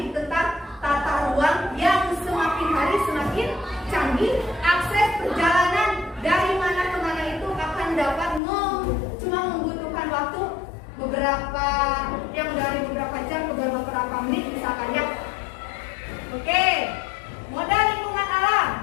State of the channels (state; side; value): drops out; right; at 8.4 s